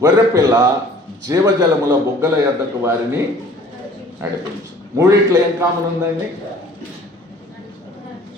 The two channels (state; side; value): normal; both; correlation 0.51